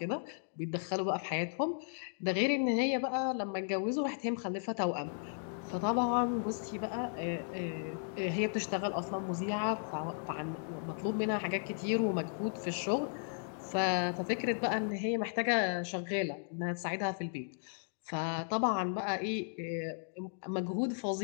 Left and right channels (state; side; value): silent; right; digital silence